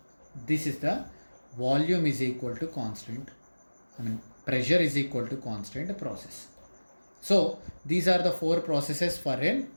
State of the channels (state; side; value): inverted; both; correlation -1.00